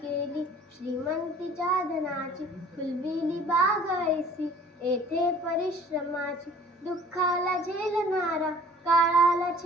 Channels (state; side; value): normal; both; correlation 0.51